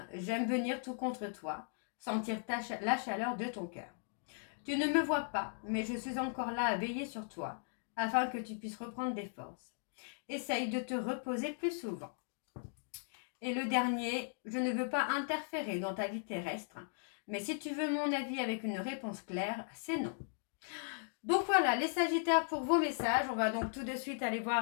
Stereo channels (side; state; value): right; silent; digital silence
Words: j'aime venir tout contre toi, sentir la chaleur de ton cœur. Tu ne me vois pas, mais je suis encore là à veiller sur toi, afin que tu puisses reprendre des forces. Essaye de te reposer plus souvent. Et le dernier, je ne veux pas interférer dans ta vie terrestre, mais si tu veux mon avis avec une réponse claire, c'est non. Donc voilà, les Sagittaires pour vos messages. On va donc tout de suite aller